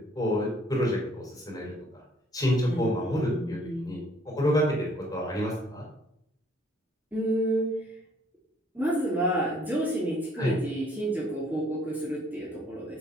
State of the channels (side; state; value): both; normal; correlation 0.61